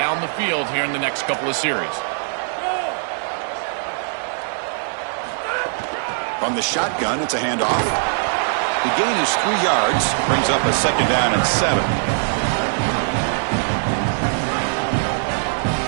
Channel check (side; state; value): left; silent; digital silence